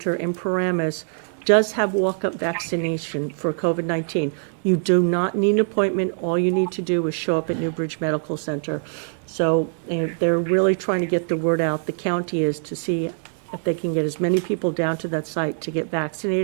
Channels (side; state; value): left; silent; 63 dB below the other